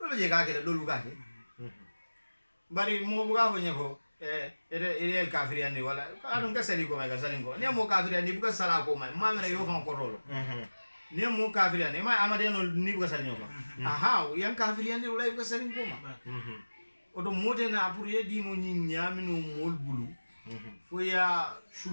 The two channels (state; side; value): inverted; both; correlation -1.00